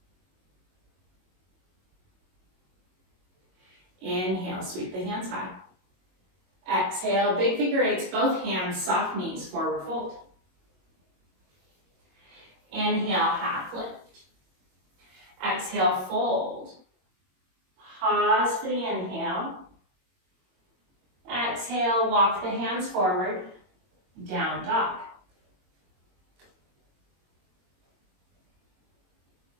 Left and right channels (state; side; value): late; left; 22 ms